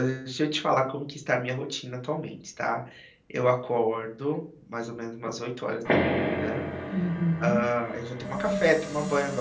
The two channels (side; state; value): both; identical; correlation 1.00